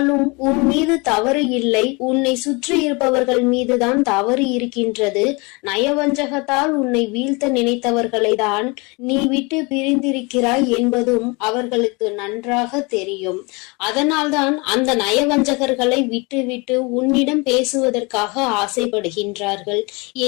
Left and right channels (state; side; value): quieter; right; 27.9 dB